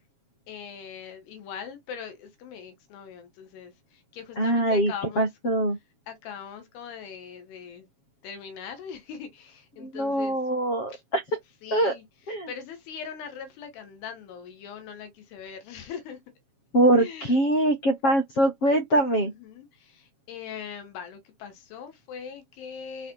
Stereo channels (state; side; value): late; right; 7.3 ms